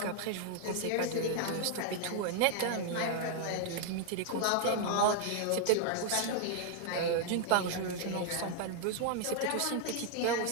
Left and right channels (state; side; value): different; both; correlation 0.00